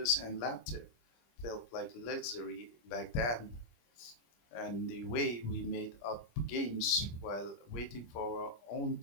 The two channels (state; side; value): late; right; 25 ms